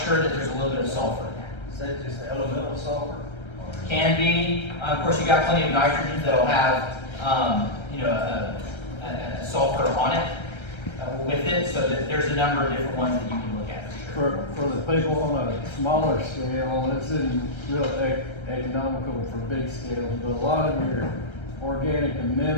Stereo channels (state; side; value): late; right; 1.3 ms